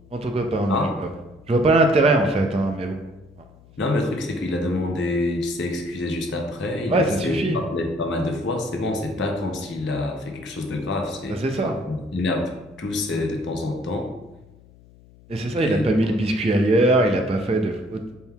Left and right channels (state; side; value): noise; left; hum, 25 dB below the sound